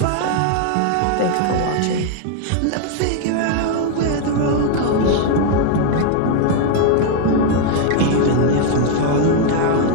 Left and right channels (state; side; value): different; both; correlation 0.00